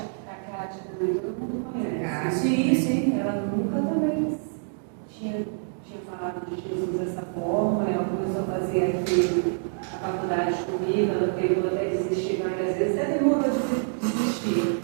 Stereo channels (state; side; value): silent; left; digital silence